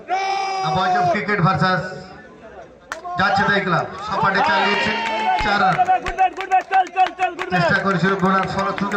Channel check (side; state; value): both; identical; correlation 1.00